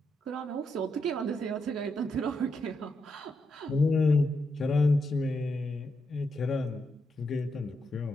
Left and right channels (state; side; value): normal; both; correlation 0.83